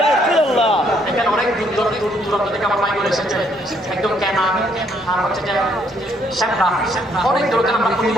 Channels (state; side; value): normal; both; correlation 0.69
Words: এখানে অনেক দূর দূরান্ত থেকে আমার ভাই বলে এসেছে একদম কেনা আর হচ্ছে যে শ্যামরা অনেক দূর থেকে আমরা প্রতি